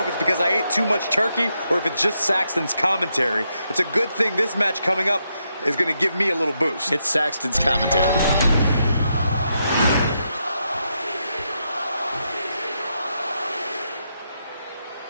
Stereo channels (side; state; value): both; inverted; correlation -0.81